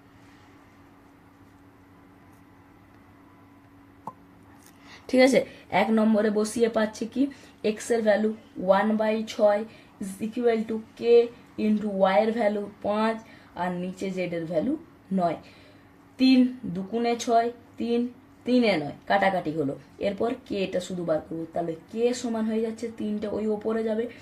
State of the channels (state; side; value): identical; both; correlation 1.00